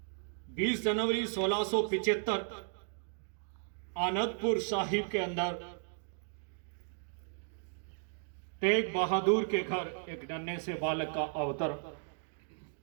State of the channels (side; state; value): left; silent; digital silence